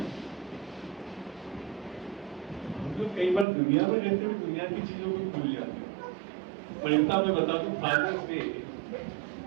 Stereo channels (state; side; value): drops out; left; at 3.5 s